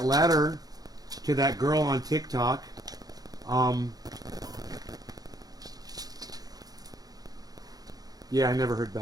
letter to that girl on TikTok. Yeah, I never heard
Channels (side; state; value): left; late; 0.18 ms